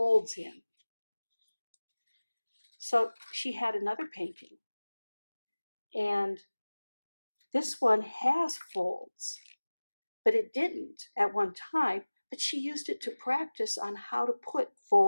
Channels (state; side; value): inverted; both; correlation -1.00